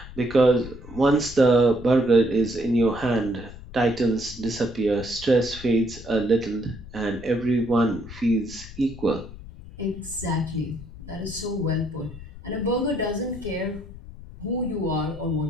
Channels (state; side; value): noise; left; rumble, 15 dB below the sound